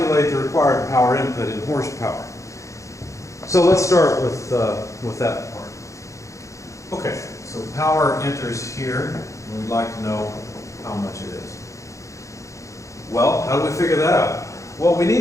the required power input in horsepower. So let's start with that part. Okay, so power enters here, and we'd like to know how much it is. Well, how do we figure that out? Well, we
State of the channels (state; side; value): late; right; 0.15 ms